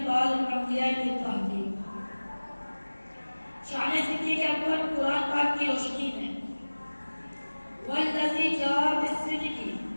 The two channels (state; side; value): inverted; both; correlation -1.00